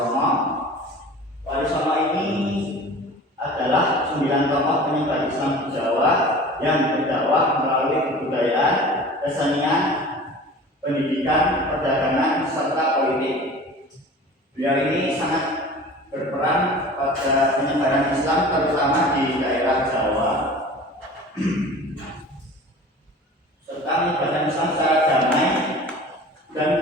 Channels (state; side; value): normal; both; correlation 0.40